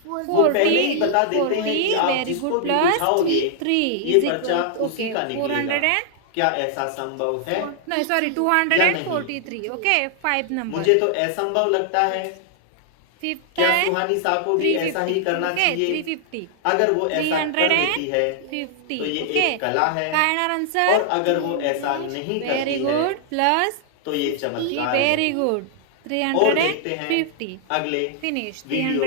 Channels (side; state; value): both; different; correlation -0.01